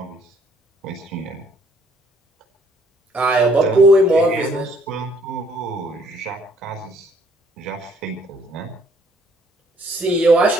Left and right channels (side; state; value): both; normal; correlation 0.64